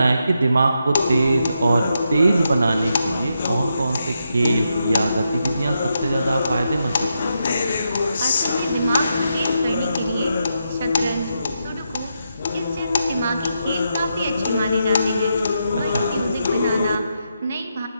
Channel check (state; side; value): inverted; both; correlation -0.83